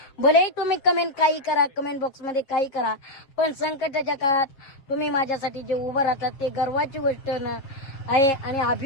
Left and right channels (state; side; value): late; right; 7.3 ms